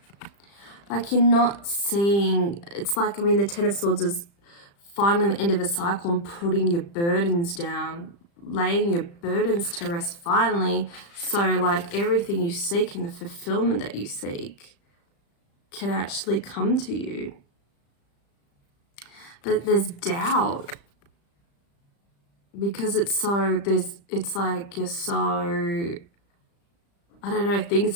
Like, you're not seeing, it's like, I mean, the Ten of Swords is finally the end of a cycle and putting your burdens down, laying your burdens to rest finally, so like everything you seek and the fulfillment that you seek can actually come to you. But there's doubt, because it's like you're so, I don't know, things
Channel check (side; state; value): right; late; 35 ms